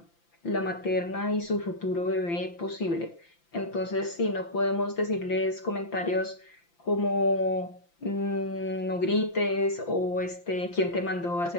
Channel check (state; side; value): late; right; 5.9 ms